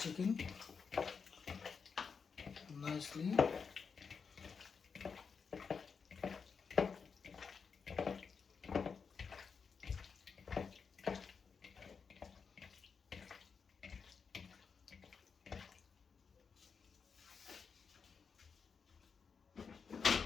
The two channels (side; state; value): right; quieter; 5.7 dB